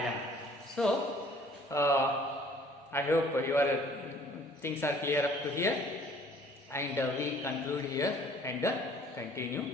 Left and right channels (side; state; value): both; normal; correlation 0.55